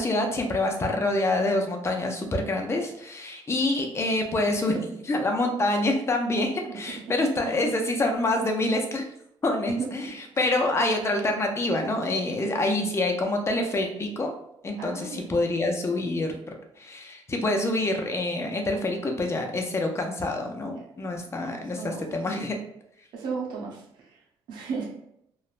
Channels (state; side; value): normal; both; correlation 0.58